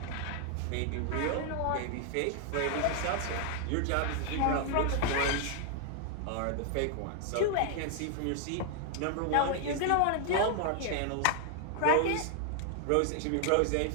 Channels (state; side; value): different; both; correlation 0.00